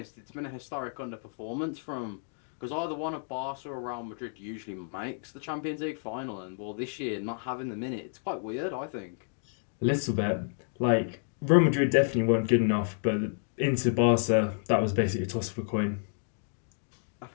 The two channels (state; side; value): silent; right; digital silence